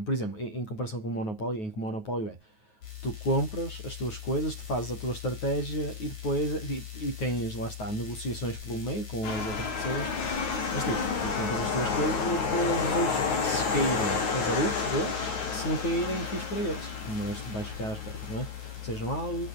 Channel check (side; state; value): right; late; 9.4 ms